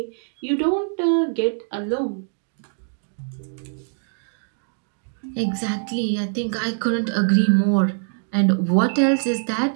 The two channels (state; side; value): silent; left; digital silence